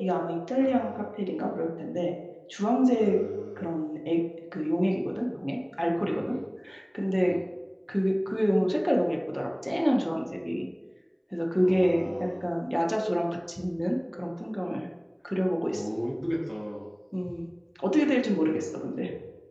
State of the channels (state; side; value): identical; both; correlation 1.00